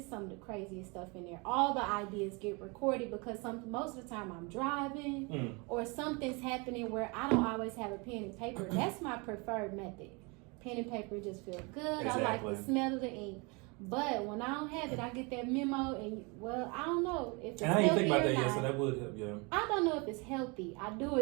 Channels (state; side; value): quieter; left; 29.6 dB